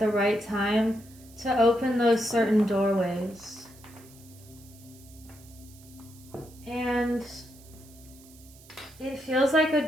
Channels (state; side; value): noise; right; hiss, 23 dB below the sound